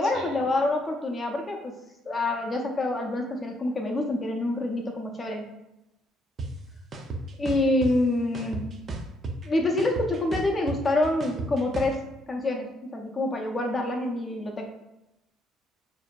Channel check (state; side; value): normal; both; correlation 0.73